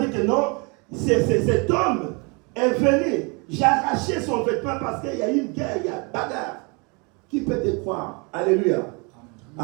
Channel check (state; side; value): quieter; left; 30.9 dB